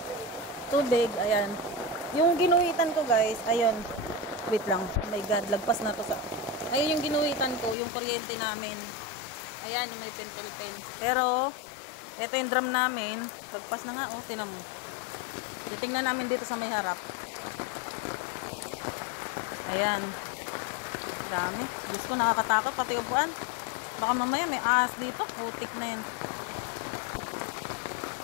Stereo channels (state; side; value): drops out; right; at 7.8 s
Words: Tubig. Ayan. Yung ginuhitan ko guys. Ayun. Wait lang. Oh my God. Lagpas na to sa... Ayun yung ginuhitan ko. Yung kuryente namin. Ayan. Yung may pentel pen. Pero, ito yung drum namin. Lagpas na nga. Oh, tinan mo. Titingnan namin dito sa may harap. Ayan. Dami. Diyos ko, nakakatakot. Pati upuan. Baka mamaya may ahas dito. Putik na yan.